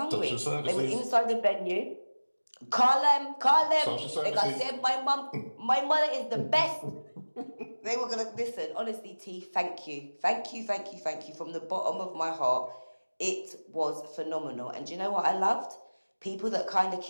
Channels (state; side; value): inverted; both; correlation -1.00